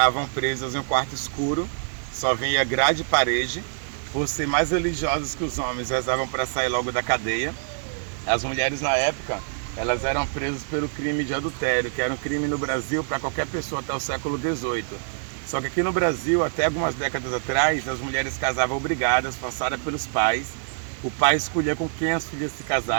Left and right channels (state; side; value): silent; left; 62 dB below the other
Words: presas em um quarto escuro, só vinha grade e parede. Por ser mais religiosos que os homens, rezavam para sair logo da cadeia. As mulheres na época, elas eram presas pelo crime de adultério, que era um crime no Brasil para qualquer pessoa até o século XVIII. Só que aqui no Brasil, até algumas décadas atrás, as mulheres casavam obrigadas, forçadas pelos pais. O pai escolhia com quem as filhas se